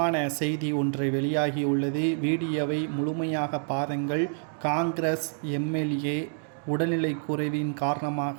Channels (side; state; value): left; silent; 60 dB below the other